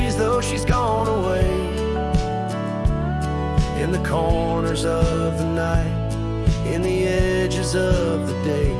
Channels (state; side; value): identical; both; correlation 1.00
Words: though she's gone away, in the corners of the night, in the edges of the day.